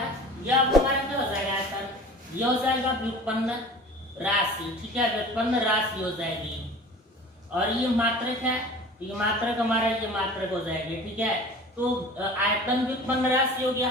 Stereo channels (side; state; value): both; normal; correlation 0.41